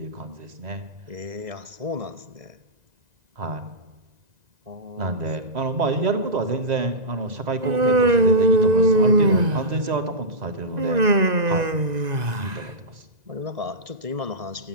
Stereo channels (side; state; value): left; late; 2.0 ms